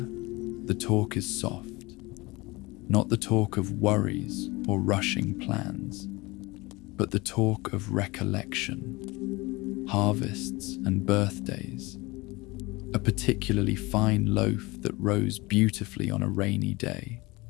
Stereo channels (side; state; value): right; quieter; 23.0 dB